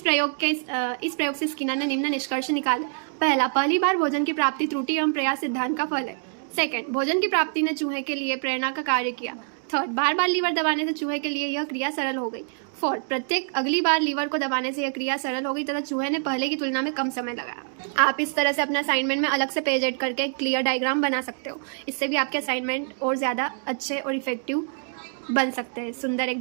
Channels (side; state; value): left; silent; 61 dB below the other